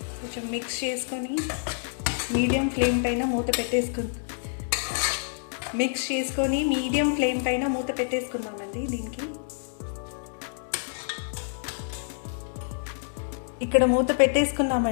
కొంచెం మిక్స్ చేసుకొని మీడియం ఫ్లేమ్ పైన మూత పెట్టేసుకుందామండి. దీనికి ఇక్కడ మూత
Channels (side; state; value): right; silent; digital silence